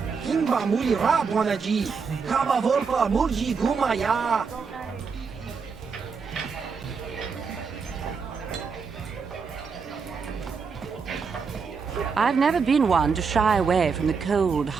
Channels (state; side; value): quieter; left; 5.4 dB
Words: Kimba muli rabwanaji, kaba volpa mulji gumaya. I've never been one to shy away from the cold,